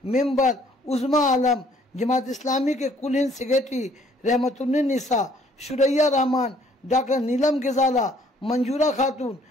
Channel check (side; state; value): both; normal; correlation 0.61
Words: मेंबर उज़्मा आलम, जमात इस्लामी के कुल हिंद सेक्रेटरी रहमतुन्निसा, शुरैया रहमान, डॉक्टर नीलम गजाला, मंजूरा खातून,